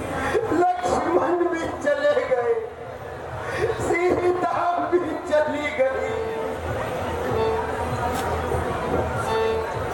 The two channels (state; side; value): identical; both; correlation 1.00